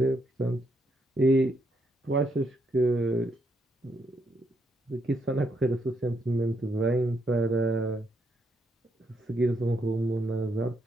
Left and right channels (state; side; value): normal; both; correlation 0.77